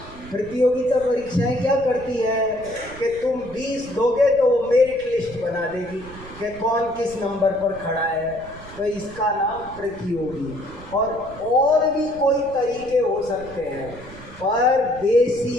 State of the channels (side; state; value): right; noise; rumble, 18 dB below the sound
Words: प्रतियोगिता परीक्षाएं क्या करती है कि तुम 20 दोगे तो वो मेरिट लिस्ट बना देगी कि कौन किस नंबर पर खड़ा है, तो इसका नाम प्रतियोगी। और भी कोई तरीके हो सकते हैं, पर